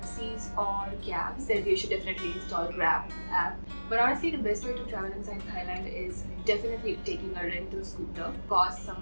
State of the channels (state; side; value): inverted; both; correlation -1.00